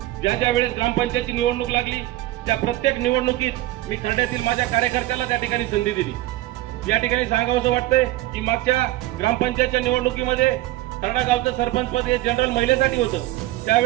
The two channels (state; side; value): quieter; left; 16.7 dB